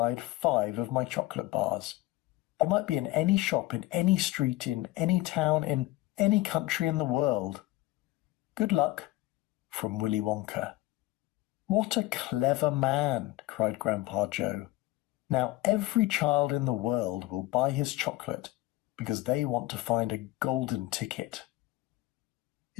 5 of my chocolate bars. They might be in any shop, in any street, in any town, in any country in the world. Good luck. From Willy Wonka. What a clever man, cried Grandpa Joe. Now every child in the world will buy his chocolate because they want to find a golden ticket.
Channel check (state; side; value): quieter; right; 18.0 dB